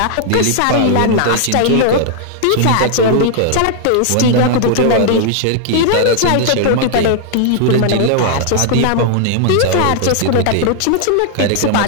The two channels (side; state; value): both; different; correlation 0.00